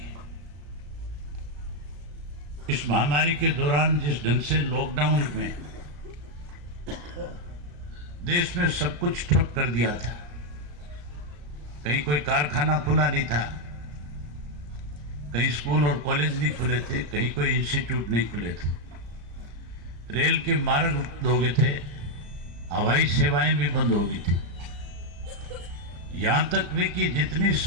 इस महामारी के दौरान जिस ढंग से लॉकडाउन में देश में सब कुछ ठप कर दिया था, कहीं कोई कारखाना खुला नहीं था, कहीं स्कूल और कॉलेज नहीं खुले थे, कहीं कोई इंस्टीट्यूट नहीं खुले थे, रेल के मार्ग बंद हो गए थे, हवाई सेवाएं भी बंद हो गई थी, यहां तक भी कि जितनी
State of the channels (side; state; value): left; late; 34 ms